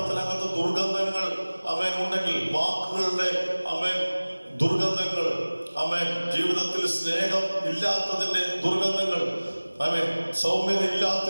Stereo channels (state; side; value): inverted; both; correlation -1.00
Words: ദുർഗന്ധങ്ങൾ ഉണ്ടെങ്കിൽ, വാക്കുകളുടെ ദുർഗന്ധങ്ങൾ, ജീവിതത്തിൽ സ്നേഹം ഇല്ലാത്തതിന്റെ ദുർഗന്ധങ്ങൾ, സൗമ്യത